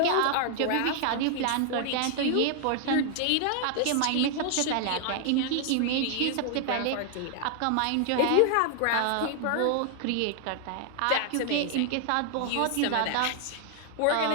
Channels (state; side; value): different; both; correlation 0.00